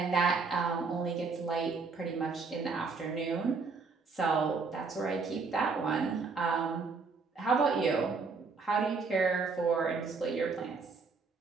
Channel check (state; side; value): quieter; left; 4.6 dB